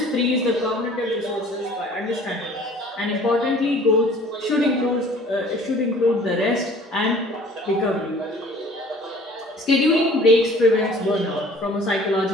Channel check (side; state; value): both; normal; correlation 0.50